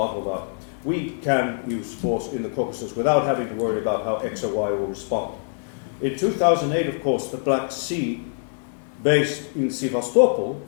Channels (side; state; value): right; silent; digital silence